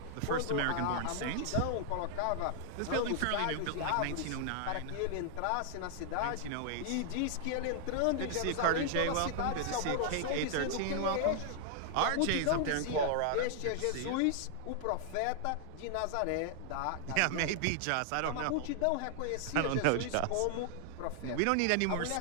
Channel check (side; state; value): both; different; correlation 0.00